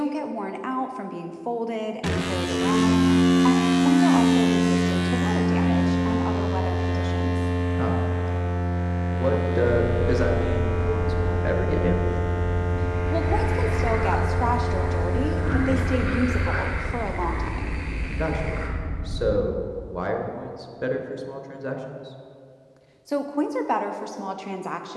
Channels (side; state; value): both; identical; correlation 1.00